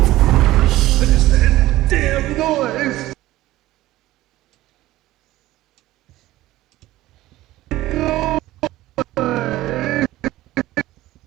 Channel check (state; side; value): quieter; left; 16.3 dB